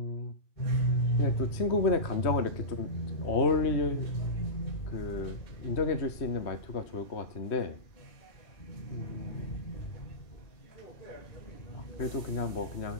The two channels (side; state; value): right; late; 3.1 ms